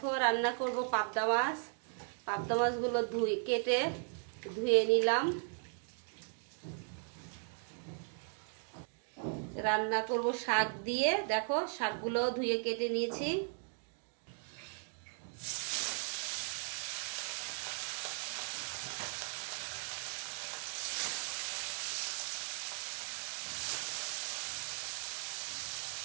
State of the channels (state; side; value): silent; left; 53 dB below the other